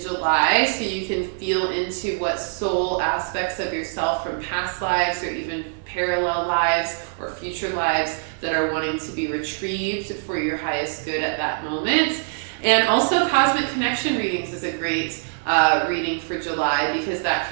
so you can feel into what soul aspects of yourself from past lives or even parallel lives or future lives that are wanting to be retrieved for your highest good at that moment. And also Cosmic Connection readings is a great reading for July, because that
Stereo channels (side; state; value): left; silent; digital silence